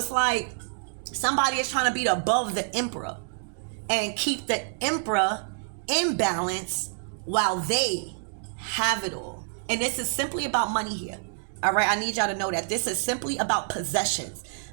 like somebody is trying to be above the Emperor and keep the Emperor in balance while they have it all. And this is simply about money here. All right, I need y'all to know that this is simply about possessions.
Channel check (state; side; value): silent; left; digital silence